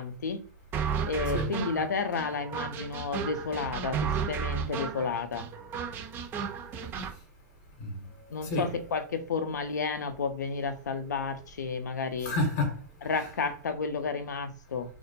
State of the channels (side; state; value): both; normal; correlation -0.12